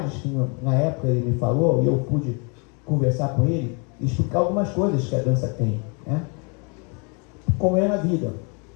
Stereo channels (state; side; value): quieter; right; 34.3 dB